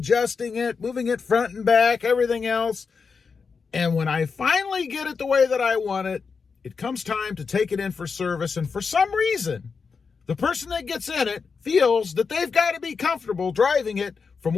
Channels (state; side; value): quieter; right; 5.3 dB